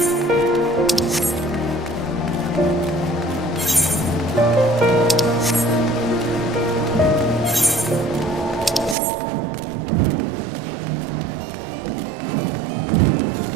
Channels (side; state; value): left; drops out; at 9.0 s